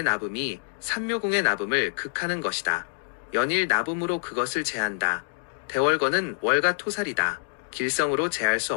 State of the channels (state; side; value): silent; right; digital silence